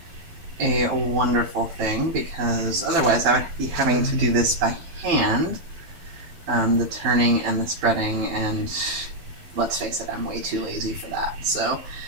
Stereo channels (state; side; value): late; left; 12 ms